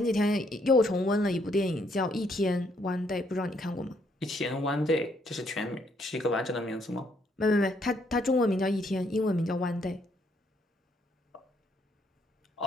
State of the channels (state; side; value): normal; both; correlation 0.71